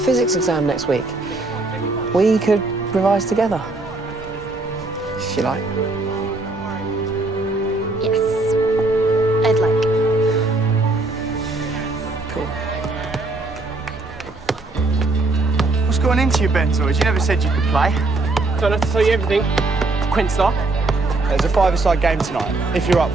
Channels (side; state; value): left; quieter; 3.2 dB